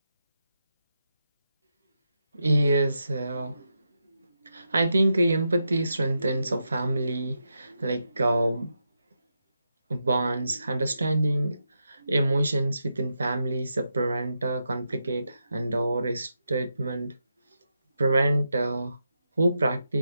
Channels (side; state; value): both; inverted; correlation -0.85